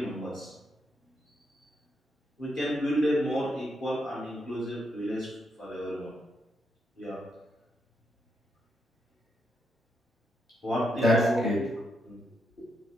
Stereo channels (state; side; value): normal; both; correlation 0.80